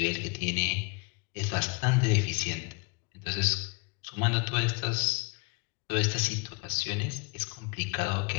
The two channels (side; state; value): right; quieter; 31.1 dB